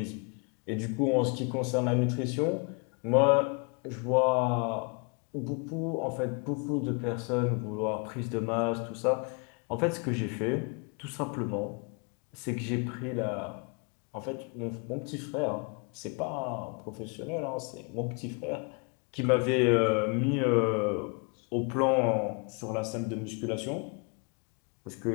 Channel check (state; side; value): quieter; right; 34.9 dB